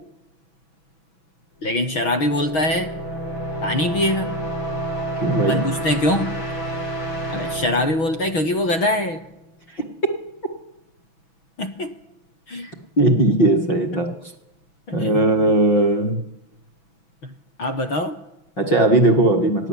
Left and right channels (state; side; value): late; right; 6.4 ms